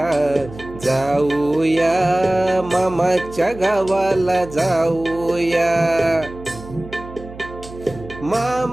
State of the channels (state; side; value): noise; right; hum, 16 dB below the sound